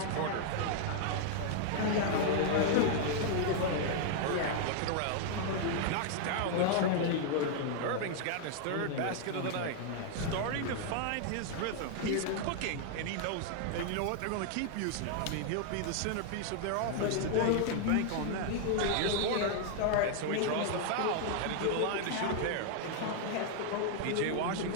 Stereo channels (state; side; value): different; both; correlation 0.00